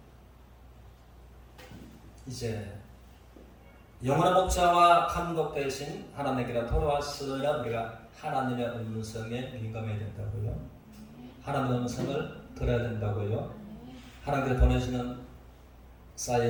이제 영원한 목자와 감독 대신 하나님께로 돌아왔으나 우리가 하나님의 음성에 민감해야 된다고요. 하나님의 음성을 들어야 된다고요. 하나님께서 보내시는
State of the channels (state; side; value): identical; both; correlation 1.00